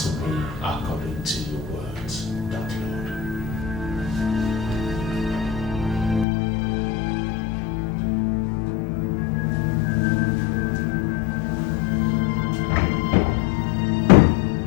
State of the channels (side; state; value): right; drops out; at 6.2 s